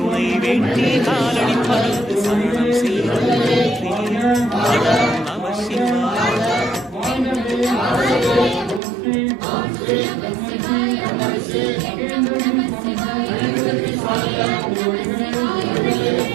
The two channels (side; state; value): left; drops out; at 8.8 s